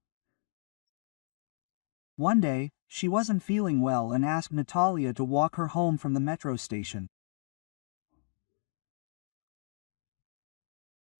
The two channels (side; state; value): right; silent; digital silence